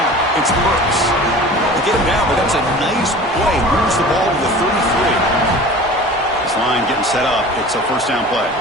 It's Burks. They get him down, but that's a nice play. Moves the ball to the 33. This line getting set up. It's a first down play.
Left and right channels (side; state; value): both; normal; correlation 0.40